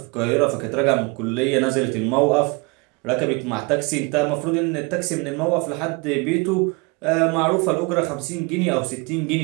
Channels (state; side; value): quieter; left; 29.2 dB